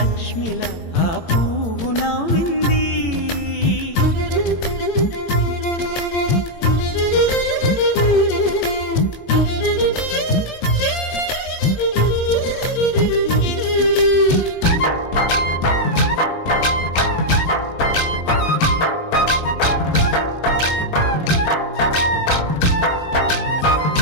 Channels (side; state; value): right; late; 18 ms